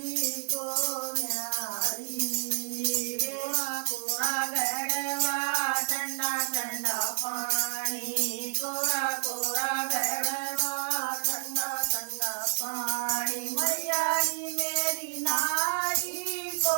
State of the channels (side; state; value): left; silent; digital silence